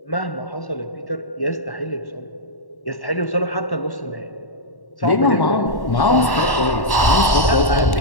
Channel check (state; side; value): late; right; 1.1 ms